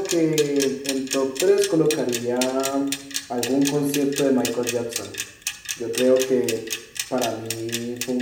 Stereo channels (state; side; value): identical; both; correlation 1.00